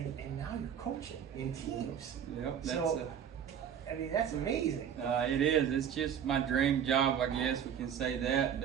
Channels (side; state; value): left; quieter; 8.6 dB